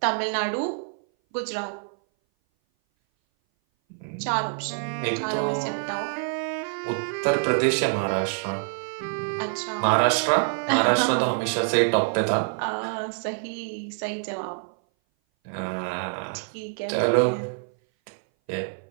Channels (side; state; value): left; silent; 58 dB below the other